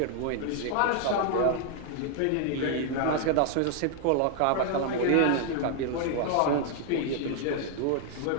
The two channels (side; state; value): both; different; correlation 0.00